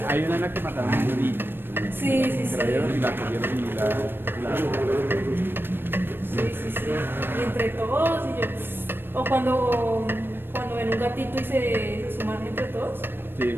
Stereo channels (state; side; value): late; left; 0.099 ms